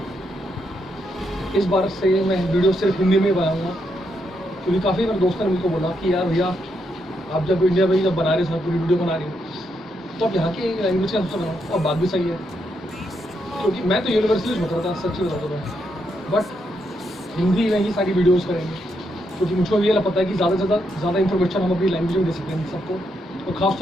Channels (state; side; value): normal; both; correlation 0.79